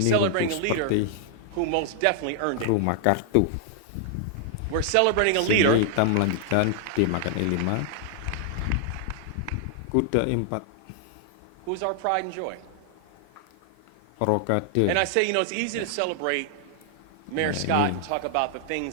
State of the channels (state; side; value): different; both; correlation 0.00